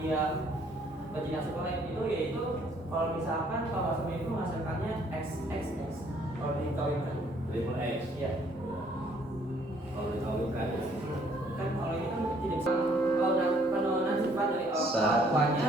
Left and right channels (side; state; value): both; normal; correlation 0.63